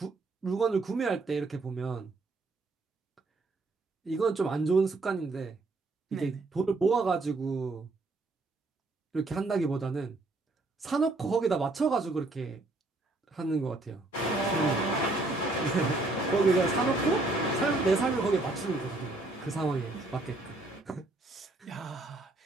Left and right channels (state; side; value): quieter; left; 3.1 dB